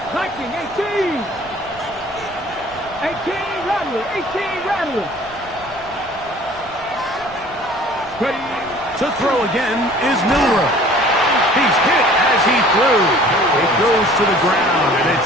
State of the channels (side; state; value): right; noise; rumble, 22 dB below the sound